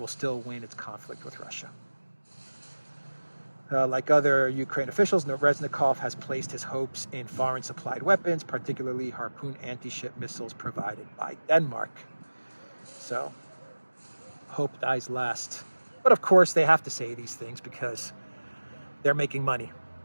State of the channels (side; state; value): both; inverted; correlation -1.00